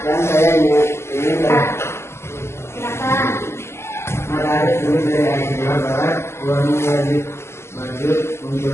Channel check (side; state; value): right; late; 0.13 ms